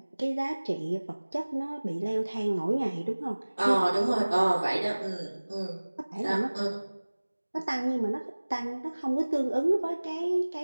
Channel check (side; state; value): both; inverted; correlation -1.00